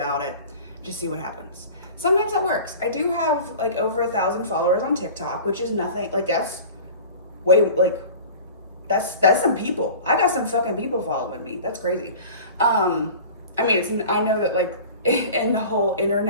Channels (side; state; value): both; inverted; correlation -0.39